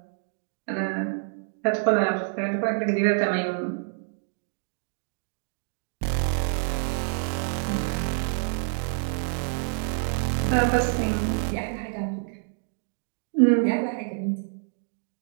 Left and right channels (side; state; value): left; silent; digital silence